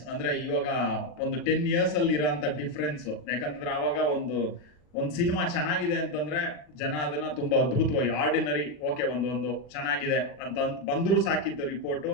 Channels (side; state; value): right; late; 40 ms